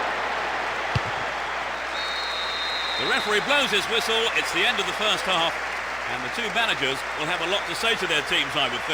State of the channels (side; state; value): left; noise; hum, 22 dB below the sound